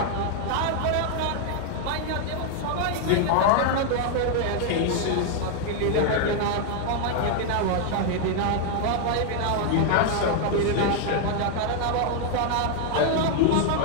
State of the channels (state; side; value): different; both; correlation 0.00